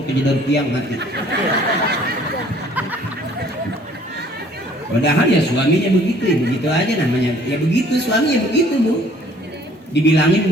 kejedar tiang mati. Padahal ya suaminya begitu, ya begitu aja namanya. Ya begitu suami ya begitu Bu. Dibilangin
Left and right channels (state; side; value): normal; both; correlation 0.56